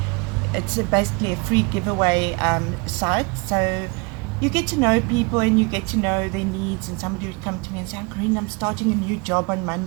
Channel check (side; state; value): left; quieter; 29.8 dB